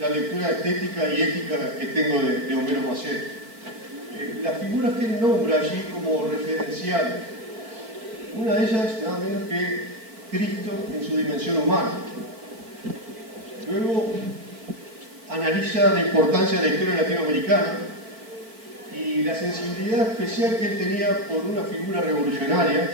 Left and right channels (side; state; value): left; late; 4.5 ms